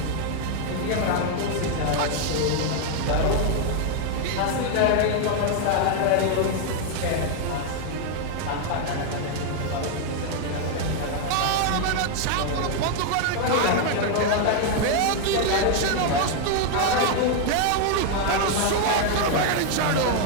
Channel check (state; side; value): different; both; correlation 0.00